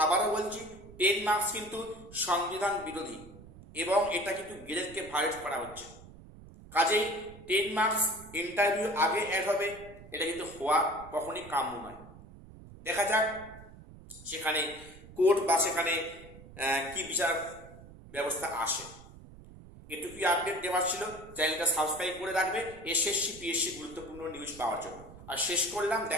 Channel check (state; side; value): noise; right; rumble, 18 dB below the sound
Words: আবারও বলছি 10 মার্কস কিন্তু সংবিধান বিরোধী এবং এটা কিন্তু গ্রেডকে ভায়োলেট করা হচ্ছে। কাজেই 10 মার্কস ইন্টারভিউ আগে অ্যাড হবে, এটা কিন্তু হওয়া কখনই কাম্য নয়। দেখা যাক সেখানে কোর্ট বা সেখানে কি বিচার ব্যবস্থা আসে। এটুকুই আপডেট দেওয়ার ছিল। চ্যানেলটা সাবস্ক্রাইব করে রাখবে এসএসসি পিএসসি গুরুত্বপূর্ণ নিউজ পাওয়ার জন্য। আর শেষ করলাম,